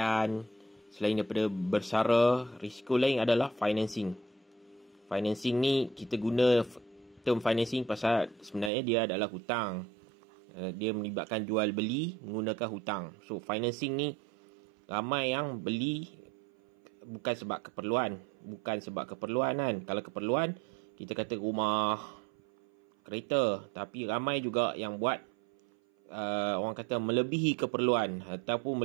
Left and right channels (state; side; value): drops out; left; at 8.7 s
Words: selain daripada bersara. Risiko lain adalah financing. Financing ni kita guna term financing pasal sebenarnya dia adalah hutang. Dia melibatkan jual beli menggunakan hutang. So, financing ni ramai yang beli bukan sebab keperluan kan. Kalau keperluan, kita kata rumah, kereta. Tapi ramai juga yang buat orang kata melebihi keperluan ataupun